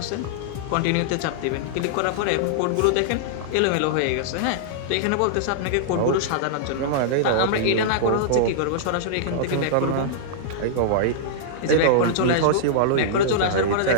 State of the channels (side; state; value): both; different; correlation -0.01